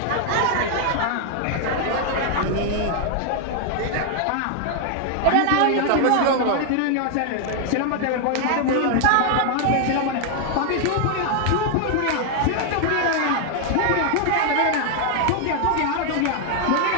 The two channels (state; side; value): different; both; correlation 0.00